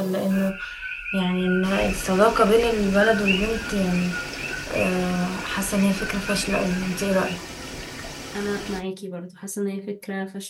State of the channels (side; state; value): both; identical; correlation 1.00